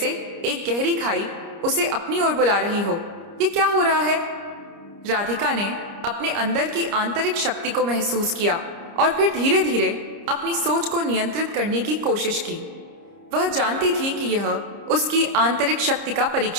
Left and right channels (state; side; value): late; left; 30 ms